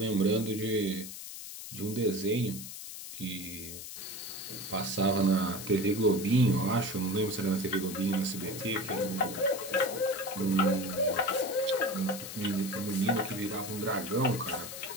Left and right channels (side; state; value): left; noise; hiss, 10 dB below the sound